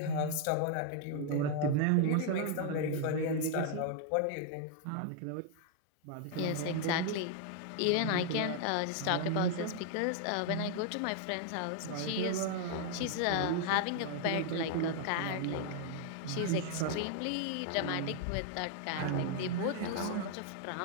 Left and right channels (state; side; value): different; both; correlation 0.00